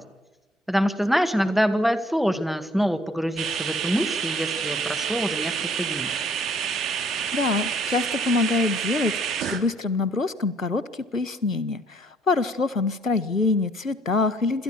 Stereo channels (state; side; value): normal; both; correlation 0.61